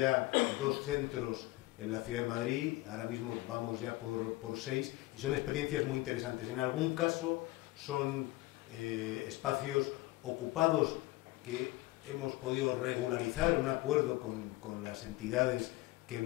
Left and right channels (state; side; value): quieter; right; 19.4 dB